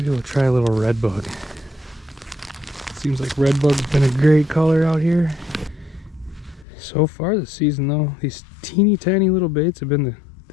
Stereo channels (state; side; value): drops out; right; at 6.7 s